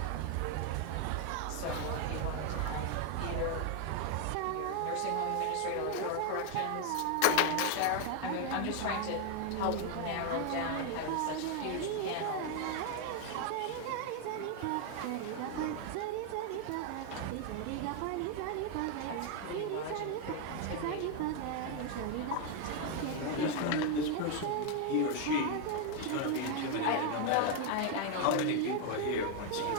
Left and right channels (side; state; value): both; different; correlation 0.01